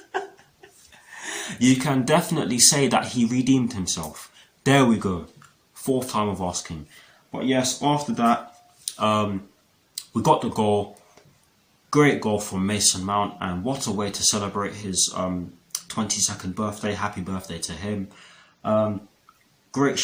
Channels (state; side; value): identical; both; correlation 1.00